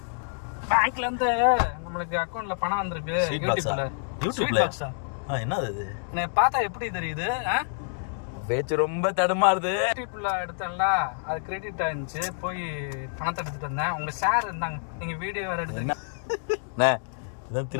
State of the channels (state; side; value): silent; right; digital silence